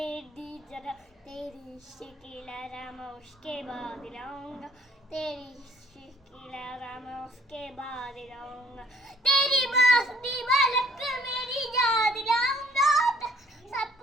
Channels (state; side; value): normal; both; correlation 0.60